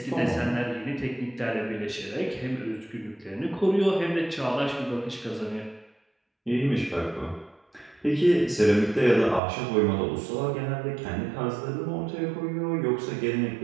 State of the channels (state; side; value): drops out; left; at 9.4 s